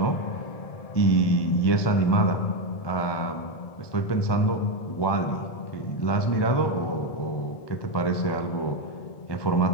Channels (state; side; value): late; right; 1.2 ms